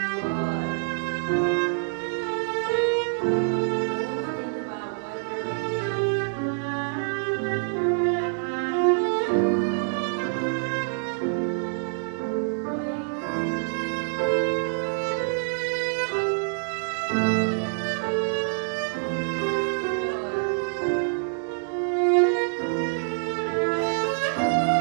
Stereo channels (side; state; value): left; silent; digital silence